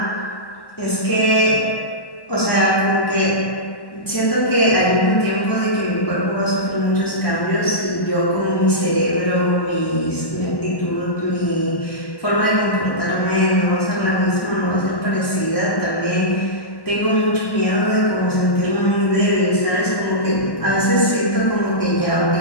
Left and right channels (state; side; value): late; right; 1.1 ms